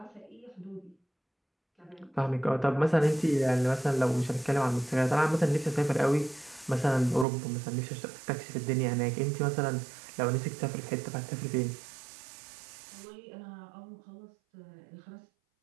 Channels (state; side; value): drops out; left; at 7.2 s